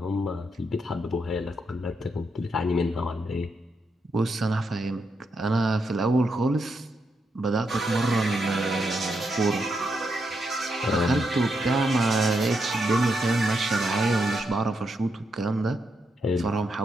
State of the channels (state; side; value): normal; both; correlation 0.82